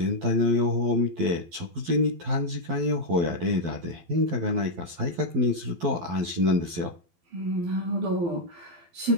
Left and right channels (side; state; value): left; late; 11 ms